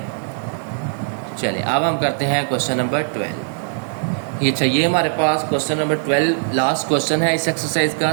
चलिए अब हम करते हैं क्वेश्चन नंबर 12। ये चाहिए हमारे पास क्वेश्चन नंबर 12, लास्ट क्वेश्चन है इस एक्सरसाइज का।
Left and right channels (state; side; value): silent; left; 66 dB below the other